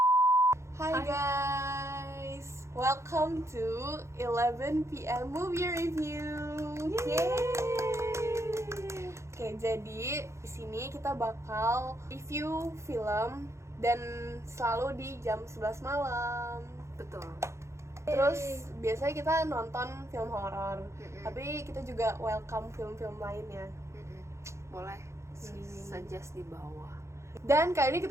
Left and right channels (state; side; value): late; left; 0.14 ms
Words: Hi guys, welcome to 11 PM movie review. Yay! Oke, jadi di sini kita bakal review film dan selalu di jam 11 malam. Betul. Terus biasanya kita nonton film horor, tapi kita juga welcome film-film lainnya. Boleh suggest di bawah. Dan kali ini